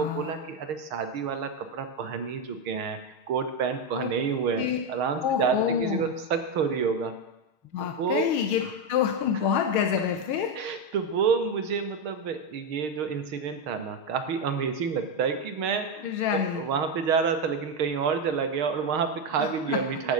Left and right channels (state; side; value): late; left; 6.5 ms